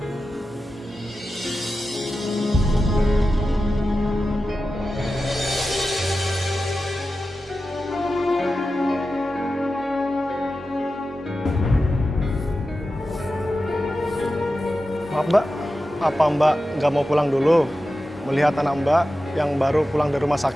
Maaf Mbak, apa Mbak nggak mau pulang dulu? Melihat anak Mbak yang baru pulang dari rumah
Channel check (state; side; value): normal; both; correlation 0.92